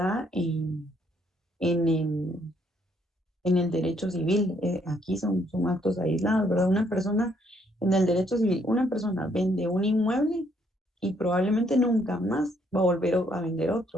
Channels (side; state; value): both; normal; correlation 0.69